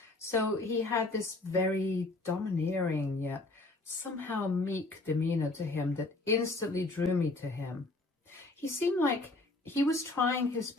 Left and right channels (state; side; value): quieter; right; 3.0 dB